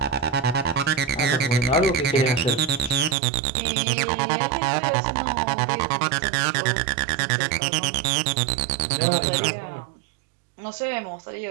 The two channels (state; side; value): drops out; left; at 3.2 s